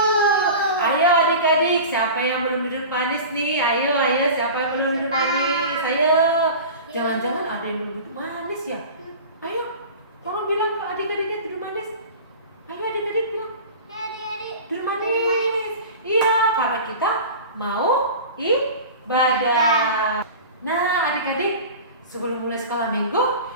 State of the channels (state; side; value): inverted; both; correlation -0.35